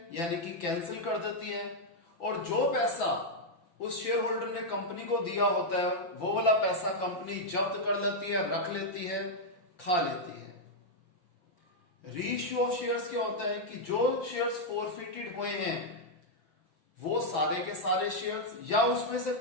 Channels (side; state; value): right; late; 5.7 ms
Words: यानी कि कैंसिल कर देती है, और जो पैसा उस शेयर होल्डर ने कंपनी को दिया होता है वो वाला पैसा कंपनी जब्त कर लेती है, रख लेती है, खा लेती है। रीइश्यू ऑफ शेयर्स क्या होता है कि जो शेयर्स फोरफिटेड हुए हैं वो सारे के सारे शेयर्स या उसमें से